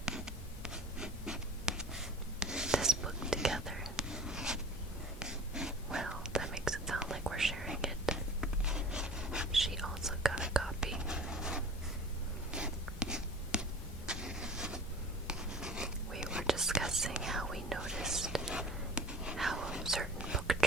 this book together. Well, that makes it sound like we're sharing it. She also got a copy.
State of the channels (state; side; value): normal; both; correlation 0.41